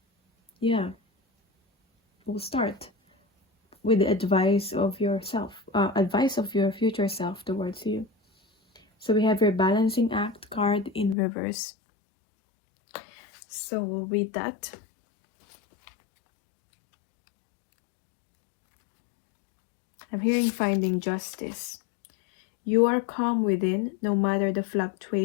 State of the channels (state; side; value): drops out; right; at 11.2 s